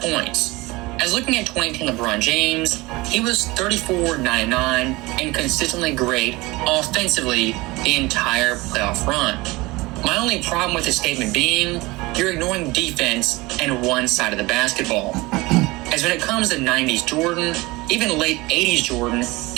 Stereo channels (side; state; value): left; quieter; 22.1 dB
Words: points. As looking at 2018 LeBron James, he was 34-99 and consistently great offensively the entire playoff run. My only problem with this statement being, you're ignoring defense and one side of the basketball. As when it comes to 90s Jordan, even late 80s Jordan,